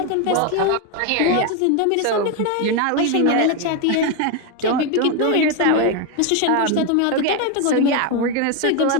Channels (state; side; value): different; both; correlation 0.02